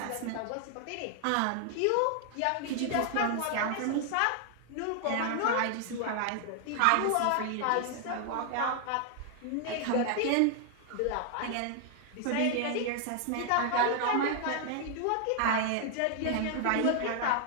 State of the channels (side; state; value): both; different; correlation 0.00